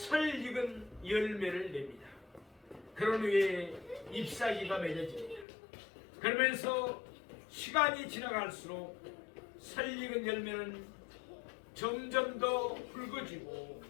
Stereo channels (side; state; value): right; drops out; at 5.5 s